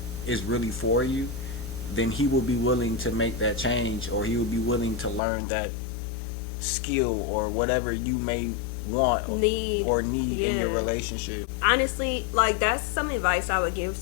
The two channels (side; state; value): right; drops out; at 5.2 s